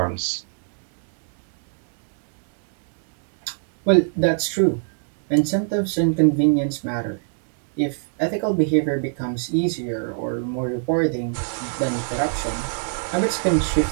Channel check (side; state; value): left; silent; digital silence